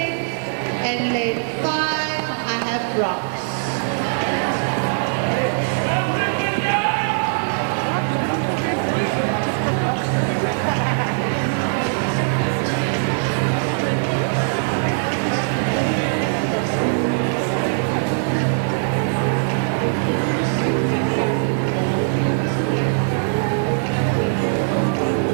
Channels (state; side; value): silent; left; 60 dB below the other